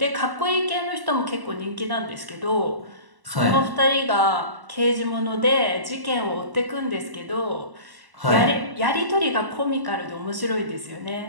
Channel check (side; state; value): left; late; 1.1 ms